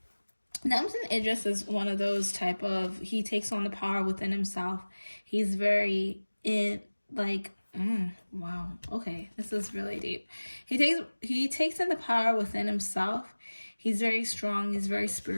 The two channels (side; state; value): both; inverted; correlation -1.00